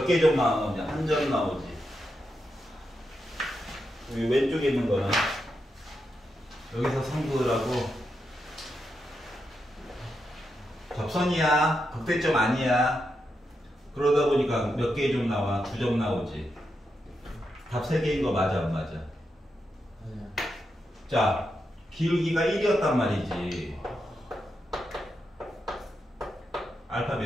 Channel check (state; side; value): normal; both; correlation 0.85